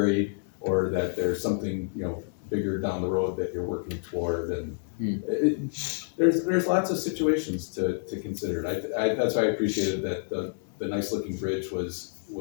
or that there's something bigger down the road that you're working toward. And there's lots of situations to consider. That's why I appreciated that the nice looking bridge was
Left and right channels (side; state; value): right; silent; digital silence